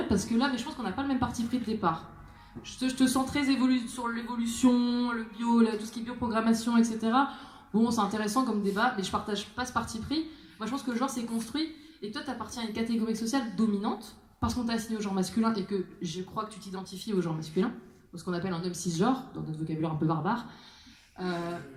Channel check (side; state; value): both; identical; correlation 1.00